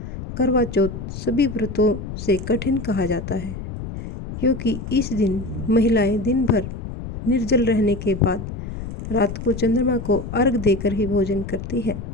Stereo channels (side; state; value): left; noise; rumble, 8 dB below the sound